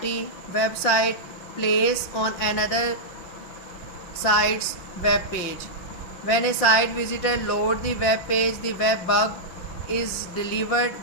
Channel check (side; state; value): right; late; 5.7 ms